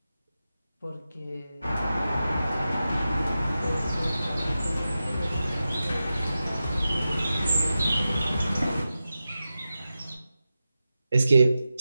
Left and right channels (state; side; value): inverted; both; correlation -0.92